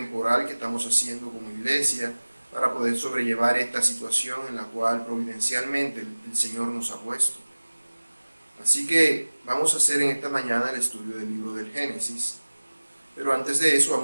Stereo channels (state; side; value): inverted; both; correlation -1.00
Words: que estamos haciendo como iglesia para poder sobrellevar esta situación en la cual providencialmente el Señor nos ha puesto. Así que vamos a hacer en esta mañana el estudio del libro del Génesis, pero antes de eso